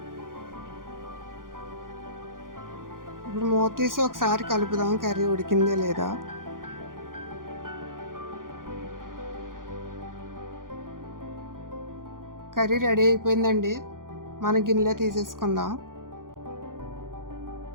ఇప్పుడు మూత తీసి ఒకసారి కలుపుదాం, కర్రీ ఉడికిందే లేదా. కర్రీ రెడీ అయిపోయిందండి. మన గిన్నెలో తీసేసుకుందాం.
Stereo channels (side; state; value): left; late; 0.90 ms